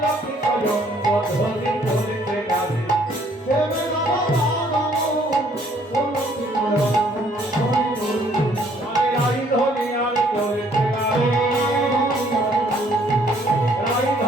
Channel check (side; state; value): both; normal; correlation 0.62